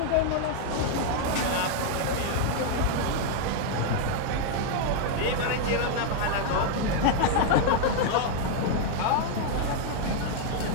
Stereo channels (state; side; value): different; both; correlation 0.00